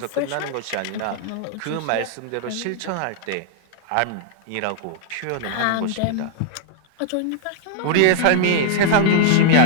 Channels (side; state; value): both; different; correlation -0.01